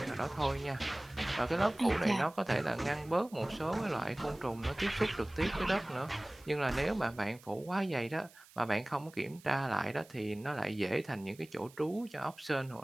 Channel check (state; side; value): noise; right; hiss, 24 dB below the sound